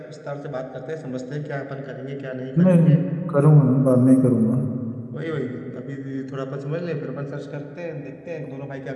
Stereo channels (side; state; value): both; identical; correlation 1.00